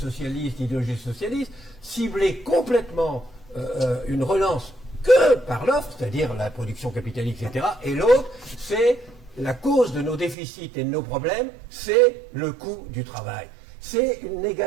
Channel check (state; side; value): drops out; left; at 10.4 s